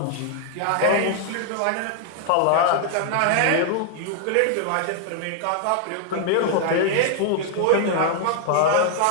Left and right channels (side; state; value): both; different; correlation 0.00